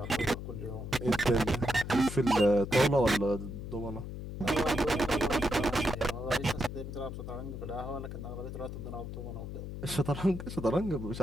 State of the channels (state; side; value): noise; left; hum, 8 dB below the sound